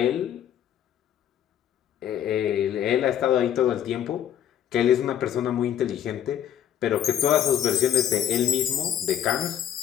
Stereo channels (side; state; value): right; quieter; 10.1 dB